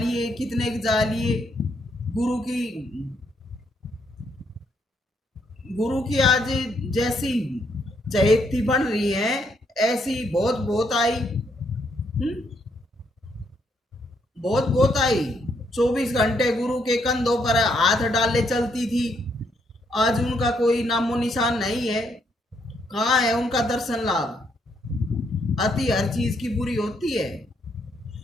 कितने के जा लिए। गुरु की आज जैसी चहेती बन रही है, ऐसी बहुत बहुत आई। बहुत बहुत आई। 24 घंटे गुरु के कंधों पर हाथ डाले चलती थी। आज उनका कोई नामो निशान नहीं है। कहाँ है उनका दर्शन लाभ? अति हर चीज की बुरी होती है।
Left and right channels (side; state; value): both; normal; correlation 0.74